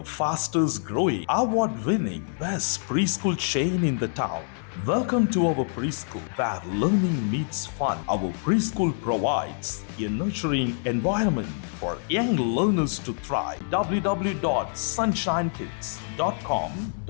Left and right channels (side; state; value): right; silent; 59 dB below the other